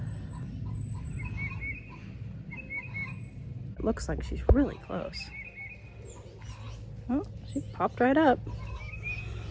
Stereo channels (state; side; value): identical; both; correlation 1.00